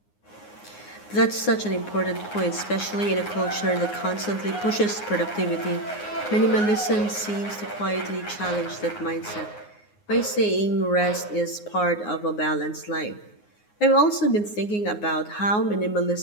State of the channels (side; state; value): right; late; 9.6 ms